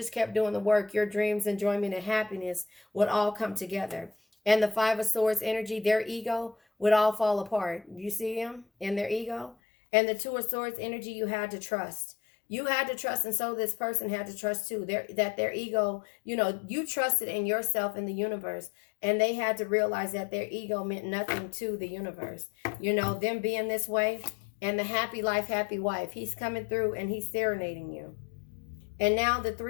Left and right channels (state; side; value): drops out; right; at 9.6 s